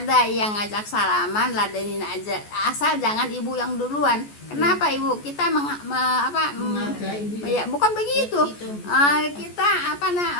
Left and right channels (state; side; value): late; right; 14 ms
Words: yang ngajak salaman, ladenin aja, asal jangan Ibu yang duluan. Kenapa Ibu? Kita ya bukan begitu. Kita